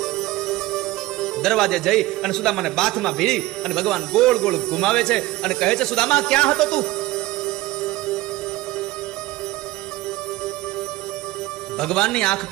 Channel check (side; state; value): left; quieter; 18.1 dB